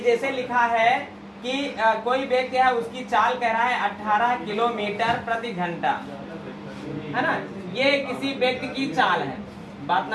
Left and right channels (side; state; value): both; identical; correlation 1.00